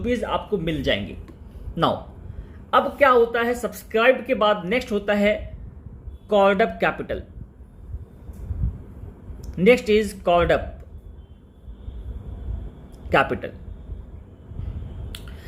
आपको मिल जाएंगे। नाउ अब क्या होता है, सब्सक्राइब के बाद नेक्स्ट होता है called up capital. Next is called up capital.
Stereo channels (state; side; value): identical; both; correlation 1.00